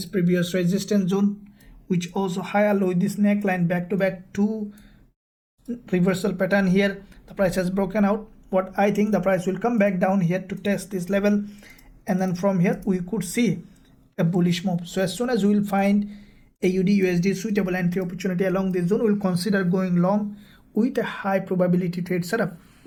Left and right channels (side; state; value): both; identical; correlation 1.00